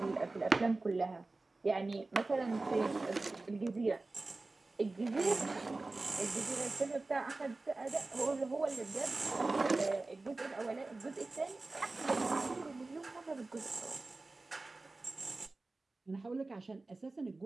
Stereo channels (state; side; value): quieter; left; 3.3 dB